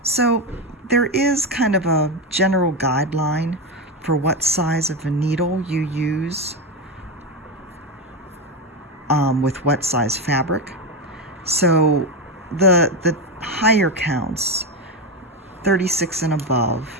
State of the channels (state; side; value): normal; both; correlation 0.13